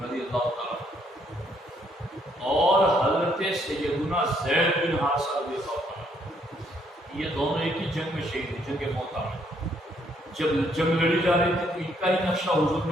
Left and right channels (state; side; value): normal; both; correlation 0.69